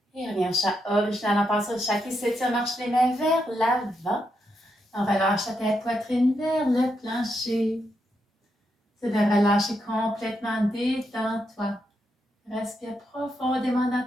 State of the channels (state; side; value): normal; both; correlation 0.82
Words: Et revient au chat original en passant au chat qui s'étire, marche les mains vers l'avant. On relâche la tête, poitrine vers le plancher. C'est de relâcher complètement, détends-toi. Respire profondément